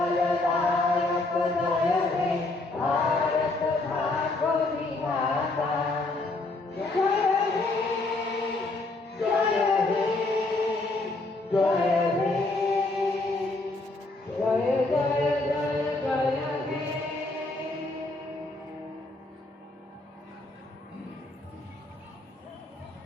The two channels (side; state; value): right; quieter; 3.1 dB